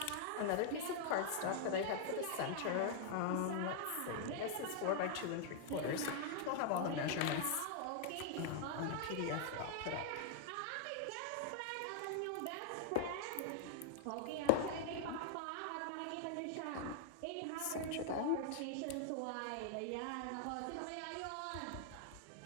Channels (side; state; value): both; different; correlation 0.00